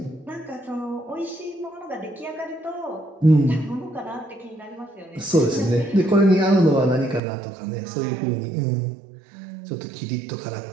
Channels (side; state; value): left; drops out; at 7.2 s